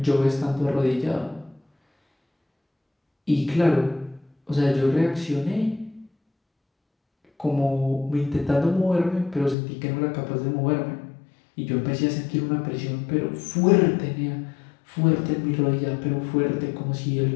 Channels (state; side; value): drops out; right; at 9.6 s